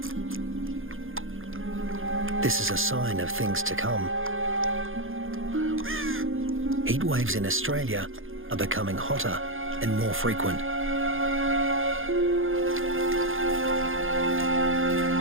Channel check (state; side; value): late; left; 0.59 ms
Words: This is a sign of things to come. Heat waves in Australia are becoming hotter and more frequent.